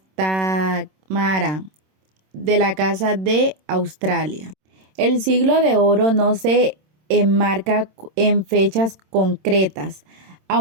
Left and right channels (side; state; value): left; late; 26 ms